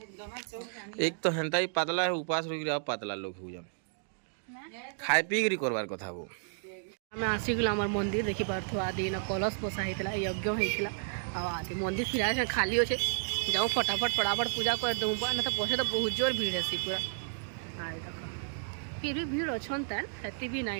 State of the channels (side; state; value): left; silent; digital silence